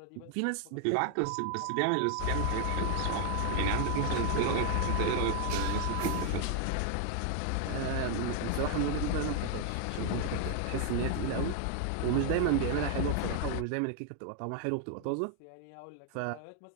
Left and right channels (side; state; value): both; different; correlation 0.00